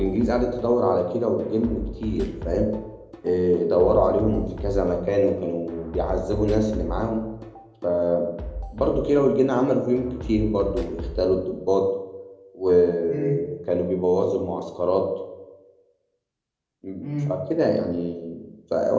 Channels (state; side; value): identical; both; correlation 1.00